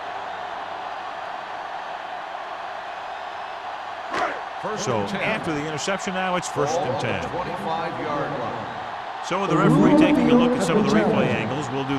So after the interception now, it's first and 10. 25-yard line. So with the referee taking a look at some of the replay angles, we'll do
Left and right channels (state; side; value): identical; both; correlation 1.00